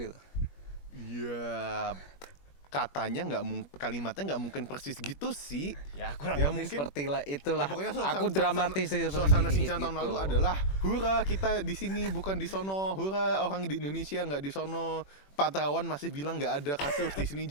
Ya katanya kalimatnya nggak mungkin persis gitu sih. Ya kurang Ya, lebih mungkin- seperti lah itulah. Ya, pokoknya Aku dramatis suasana seperti Sinchan tahun gitu. lalu adalah hura kita di sini bukan di sono, hura orang di Indonesia nggak di sono. Pak Terawan masih bilang nggak ada kasus di sini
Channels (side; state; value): right; late; 21 ms